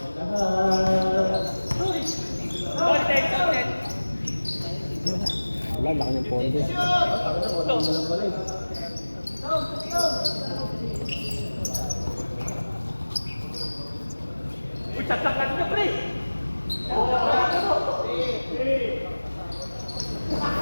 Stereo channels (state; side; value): inverted; both; correlation -1.00